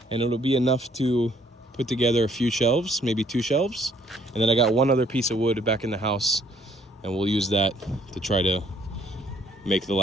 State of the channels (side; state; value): both; normal; correlation 0.63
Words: and it'll be enough to put together a few shelves, maybe 2 shelves. And then I got one other piece of wood back in the house, and we'll use that to try to make the